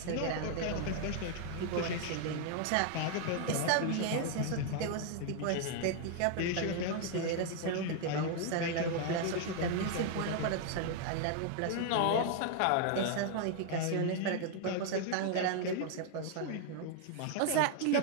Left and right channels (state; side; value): different; both; correlation 0.00